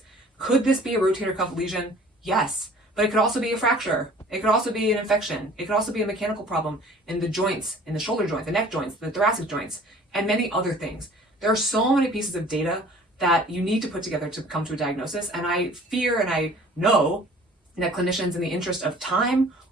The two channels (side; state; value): both; normal; correlation 0.49